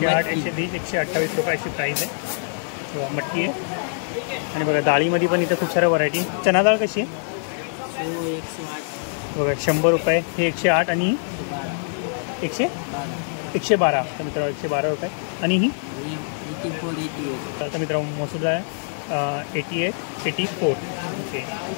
120, 128 रुपये अशी प्राईस आहे. बघा मटकी आहे. आणि बघा डाळीमध्ये पण इथं खूप साऱ्या व्हरायटी. चना डाळ कशी आहे? 108. बघा 100 रुपये, हे 108 आणि 112. तर मित्र 112 रुपये. आणि ही 84, 88. तर मित्र मसूर डाळ आहे 88, 84. ओके.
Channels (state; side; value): silent; right; digital silence